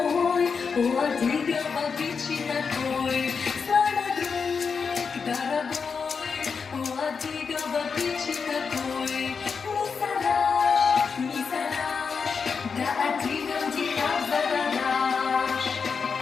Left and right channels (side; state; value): right; quieter; 5.6 dB